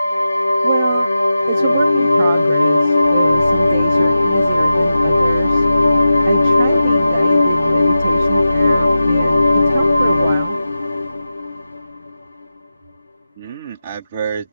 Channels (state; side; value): inverted; both; correlation -0.92